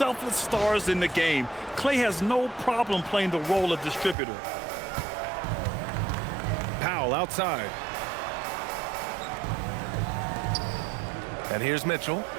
stars in the game. Klay has no problem playing the role of distributor. Powell outside. And here's Mitchell.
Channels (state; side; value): drops out; left; at 4.2 s